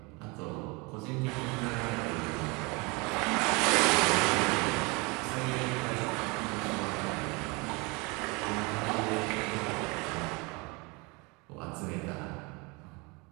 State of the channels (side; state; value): left; quieter; 27.6 dB